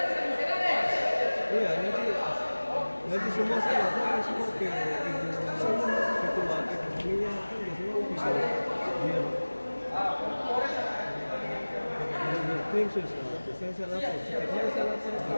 Iya, nanti semua saya lakukan semua ke ibu ketua ekonominya kan biasanya bisa dia klaim saya lapor, setiap hari saya lapor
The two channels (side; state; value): both; inverted; correlation -1.00